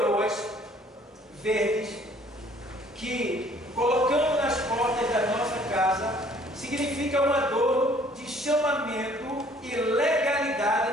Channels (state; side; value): normal; both; correlation 0.58